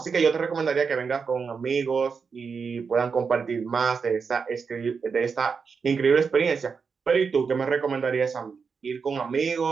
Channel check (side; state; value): left; quieter; 5.6 dB